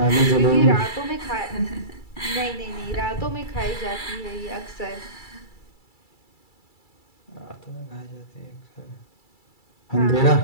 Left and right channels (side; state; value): right; late; 2.3 ms